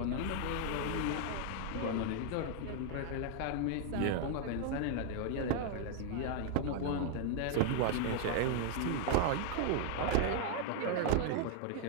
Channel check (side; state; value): both; different; correlation 0.00